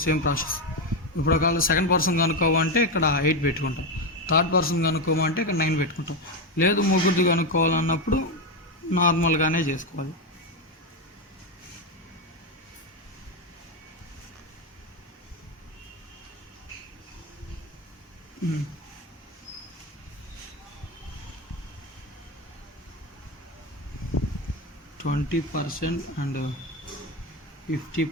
సేమ్ ప్రాసెస్. ఇప్పుడు ఒకవేళ సెకండ్ పర్సన్ కనుక్కోమంటే ఇక్కడ 8 పెట్టుకుంటాం, థర్డ్ పర్సన్ కనుక్కోమంటే ఇక్కడ 9 పెట్టుకుంటాం. లేదు ముగ్గురిది కనుక్కోవాలన్నప్పుడు నార్మల్గానే చేసుకోవాలి. %20 and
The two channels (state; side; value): normal; both; correlation 0.10